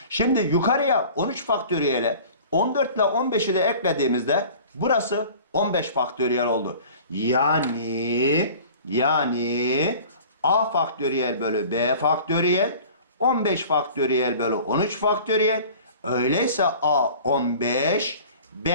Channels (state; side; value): inverted; both; correlation -0.44